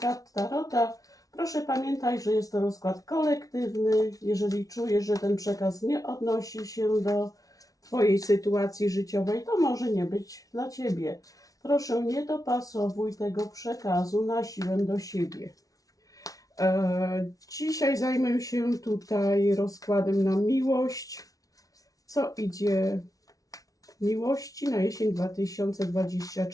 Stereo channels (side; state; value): right; late; 0.18 ms